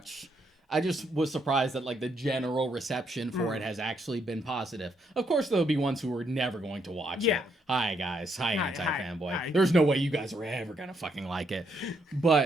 I just was surprised that like the general reception for it has actually been positive. Of course, there'll be ones who are never going to watch it. Hi guys, hi anti-fanboy. hi. There's no way you guys are ever gonna fucking like it.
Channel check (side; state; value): both; normal; correlation 0.75